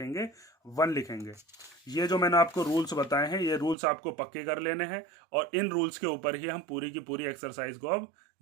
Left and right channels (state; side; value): drops out; left; at 3.8 s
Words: 1 लिखेंगे। ये जो मैंने आपको रूल्स बताए हैं, ये रूल्स आपको पक्के कर लेने हैं, और इन रूल्स के ऊपर ही हम पूरी की पूरी एक्सरसाइज को अब